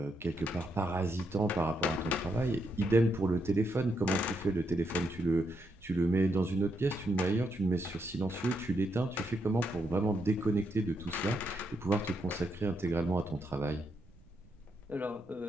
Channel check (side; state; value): right; noise; rumble, 27 dB below the sound